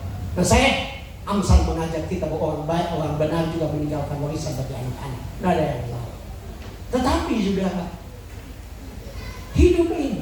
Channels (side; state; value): both; identical; correlation 1.00